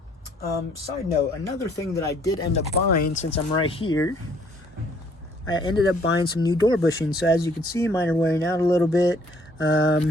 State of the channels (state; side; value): normal; both; correlation 0.62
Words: Side note, another thing that I did end up buying, since I'm right here, I ended up buying some new door bushings. So as you can see, mine are wearing out a little bit.